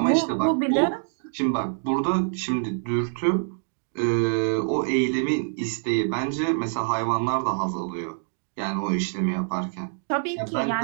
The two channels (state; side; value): silent; left; digital silence